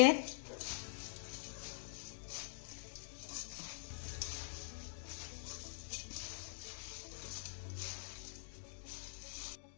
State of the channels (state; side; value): silent; right; digital silence